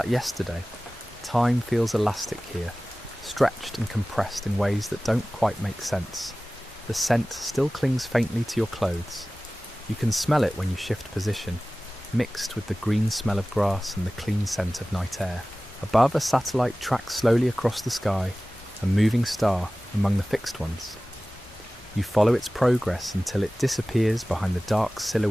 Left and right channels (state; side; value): normal; both; correlation 0.97